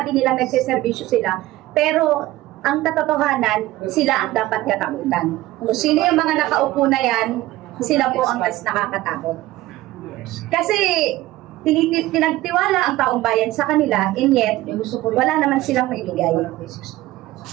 nilang nagsiservisyo sila, pero ang katotohanan, sila ang dapat katakutan. Kung sino yung mga nakaupo na yan, sila po ang mas nakakatakot. Kasi pinagtiwala ang taong bayan sa kanila, and yet, wala naman silang maibigay.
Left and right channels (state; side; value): quieter; left; 16.8 dB